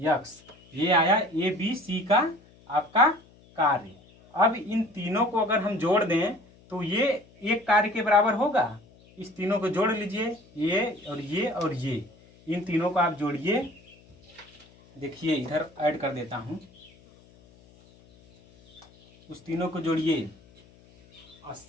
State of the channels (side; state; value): left; noise; hum, 27 dB below the sound